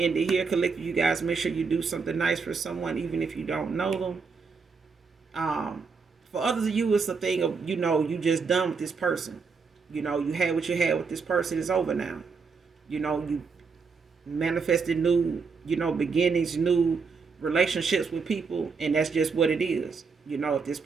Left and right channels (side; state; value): left; quieter; 5.1 dB